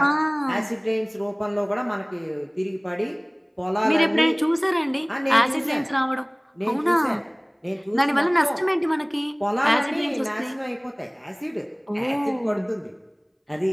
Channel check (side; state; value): both; identical; correlation 1.00